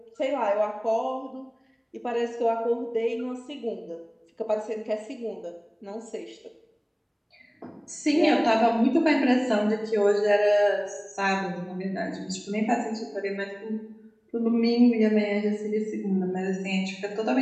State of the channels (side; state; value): both; identical; correlation 1.00